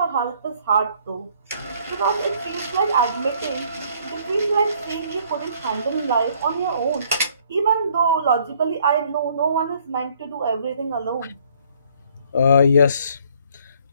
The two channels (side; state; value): both; inverted; correlation -0.62